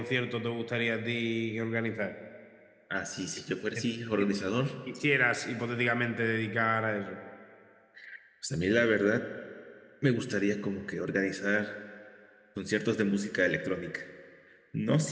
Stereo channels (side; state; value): both; identical; correlation 1.00